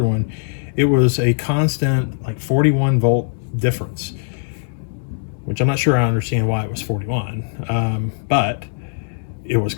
one, it was a constant like 41 volt difference, which I'm not sure I understand why it was 41, but it was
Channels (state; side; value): silent; right; digital silence